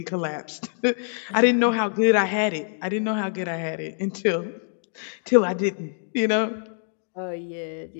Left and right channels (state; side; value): silent; right; digital silence